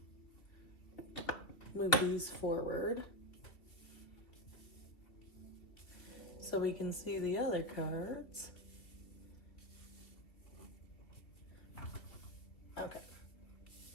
move these forward so we can see the other cards. Okay.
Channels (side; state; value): right; late; 3.0 ms